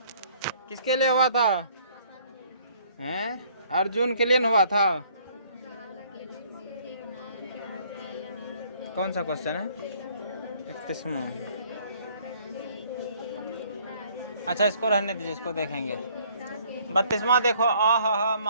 किसके लिए हुआ था? हैं? अर्जुन के लिए हुआ था। कौन सा क्वेश्चन है? 31वां। अच्छा इसको रहने दीजिए, इसको देखेंगे। 32वां देखो, आह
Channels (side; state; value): both; inverted; correlation -0.60